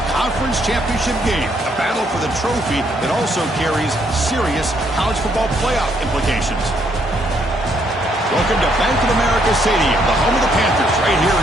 Conference Championship game, a battle for the trophy that also carries serious college football playoff implications. Welcome to Bank of America Stadium, the home of the Panthers, right here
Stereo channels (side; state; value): both; normal; correlation 0.71